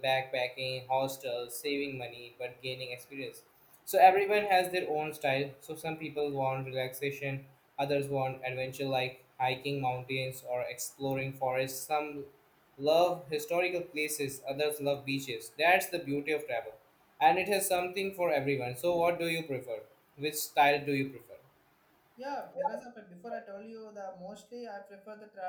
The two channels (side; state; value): both; identical; correlation 1.00